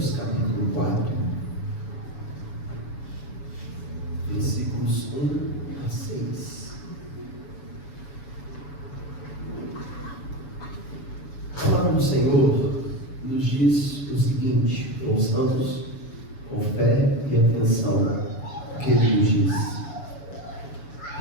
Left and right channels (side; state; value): right; late; 7.0 ms